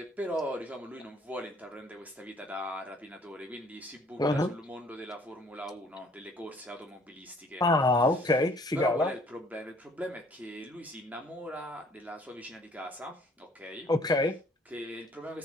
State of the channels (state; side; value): normal; both; correlation 0.58